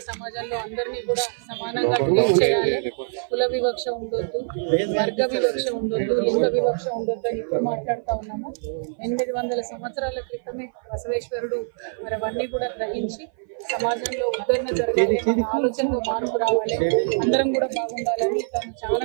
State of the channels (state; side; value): silent; left; 57 dB below the other